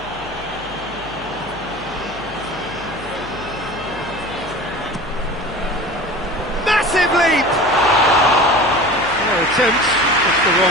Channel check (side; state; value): left; noise; hum, 17 dB below the sound